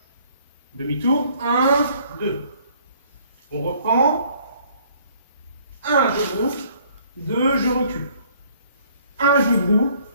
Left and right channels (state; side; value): inverted; both; correlation -0.60